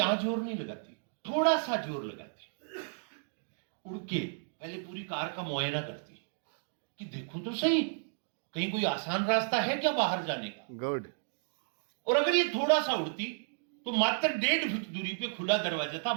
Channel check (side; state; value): left; silent; digital silence